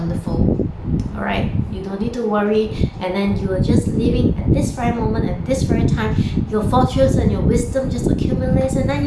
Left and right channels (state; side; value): identical; both; correlation 1.00